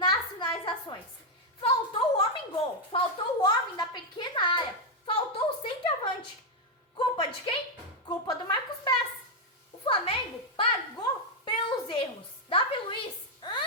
finalizações. Faltou o homem-gol, faltou o homem da pequena área, faltou o centroavante. Culpa de quem? Culpa do Marcos Braz. O Flamengo pagou pelos erros. Davi Luiz,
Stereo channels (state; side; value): normal; both; correlation 0.01